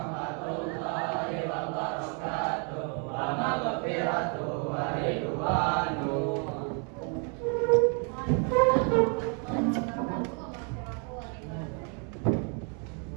wabarakatuh. Wa maghfiratuh wa ridwanuh.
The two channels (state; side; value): quieter; left; 38.3 dB